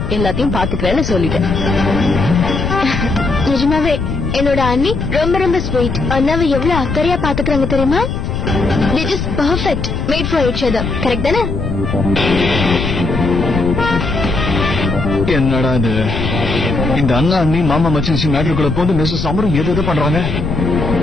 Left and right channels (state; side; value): noise; left; rumble, 3 dB below the sound